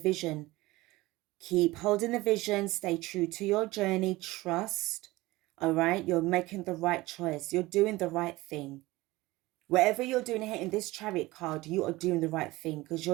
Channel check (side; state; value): left; quieter; 19.7 dB